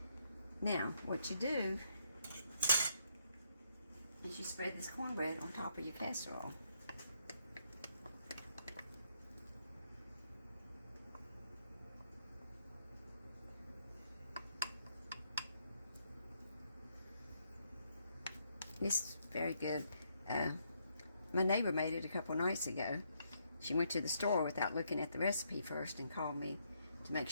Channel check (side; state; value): both; inverted; correlation -0.75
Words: Now, what you do is you spread this cornbread on top of your casserole. It's very good. My neighbor made it a couple nights ago. She went to the store without looking at the recipe first and called me to make